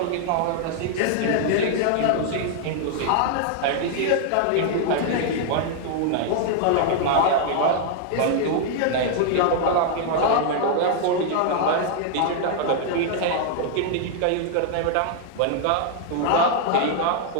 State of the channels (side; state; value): both; different; correlation 0.00